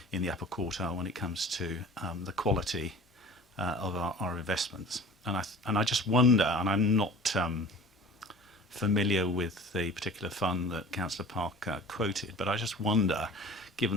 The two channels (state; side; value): normal; both; correlation 0.42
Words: in the upper quartile when it comes to the quality of our investments. And I just wonder, and I'm not familiar with the particular fund that Councillor Parker quoted, but I just wonder, given